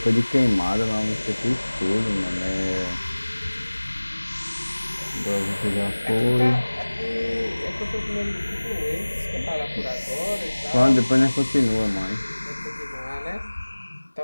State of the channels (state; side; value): inverted; both; correlation -1.00